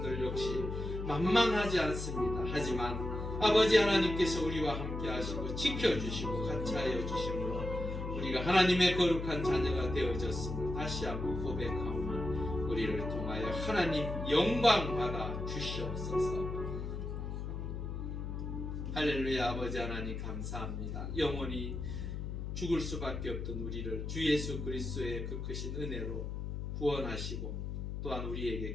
역시 만만하지 않습니다. 하지만 아버지 하나님께서 우리와 함께 하시고 지켜주시고 같이하여 주심으로 우리가 하나님의 거룩한 자녀가 되어졌음을 다시 한번 고백하오며 우리를 통하여 하나님 영광 받아 주시옵소서. 할렐루야. 아버지 하나님 감사합니다. 영원히 죽을 수밖에 없던 우리를 주 예수 그리스도의 그 크신 은혜로 구원하시고 또한 우리에게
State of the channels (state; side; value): noise; left; hum, 5 dB below the sound